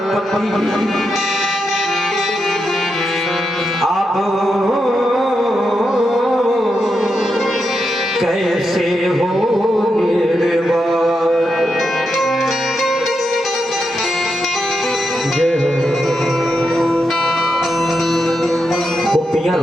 अब कैसे हो निर्वाण। जय हो। गोपियां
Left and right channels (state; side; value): normal; both; correlation 0.85